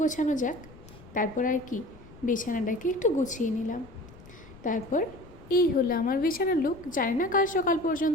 গোছানো যাক। তারপর আর কি, বিছানাটাকে একটু গুছিয়ে নিলাম। তারপর এই হলো আমার বিছানার লুক। জানি না কাল সকাল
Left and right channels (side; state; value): left; noise; rumble, 20 dB below the sound